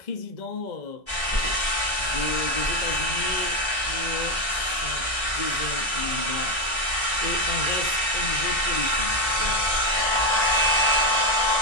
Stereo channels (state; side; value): late; right; 1.3 ms